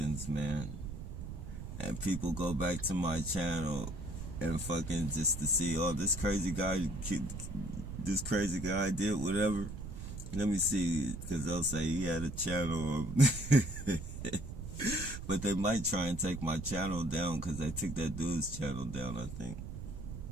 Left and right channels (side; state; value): right; noise; rumble, 8 dB below the sound